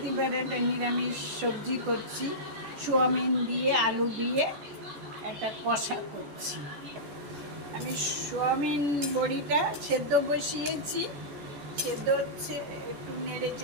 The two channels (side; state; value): left; late; 14 ms